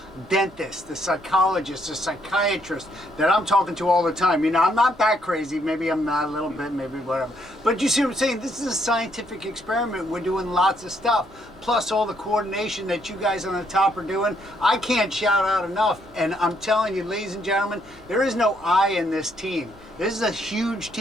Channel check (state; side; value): normal; both; correlation 0.72